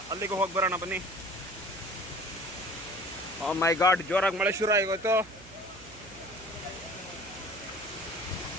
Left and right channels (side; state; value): right; noise; hum, 20 dB below the sound